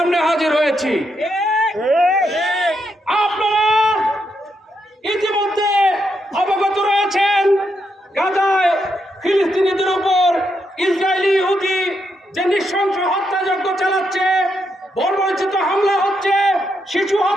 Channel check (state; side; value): normal; both; correlation 0.81